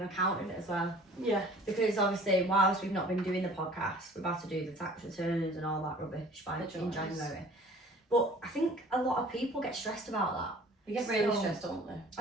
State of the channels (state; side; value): normal; both; correlation 0.49